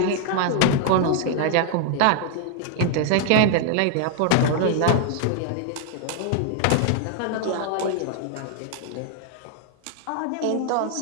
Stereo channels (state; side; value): different; both; correlation 0.00